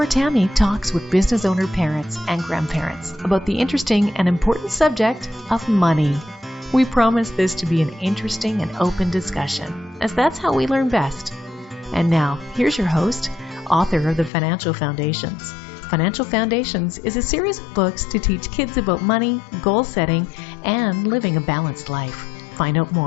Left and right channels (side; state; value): right; drops out; at 14.3 s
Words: Tammy talks with business owner parents and grandparents about the interesting and important subject of money. We promise this to be an interesting and open discussion, as that's how we learn best. And now, here's your host, author of the Financial Foundations. Financial Foundations is a series of books to teach kids about money, goal setting, and living a balanced life. Find out